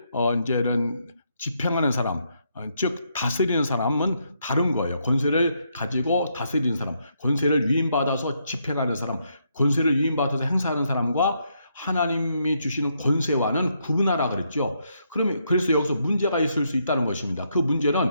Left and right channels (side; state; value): both; inverted; correlation -0.77